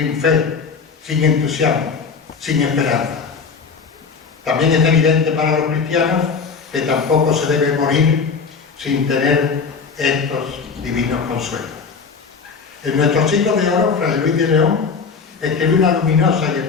fe, sin entusiasmo, sin esperanza. También es evidente para los cristianos que tampoco se debe morir sin tener estos divinos consuelos. En nuestro siglo de oro, Fray Luis de León escribió una luminosa y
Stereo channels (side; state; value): right; quieter; 5.4 dB